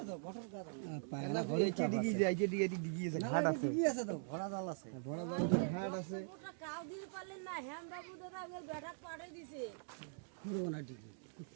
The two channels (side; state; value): left; silent; digital silence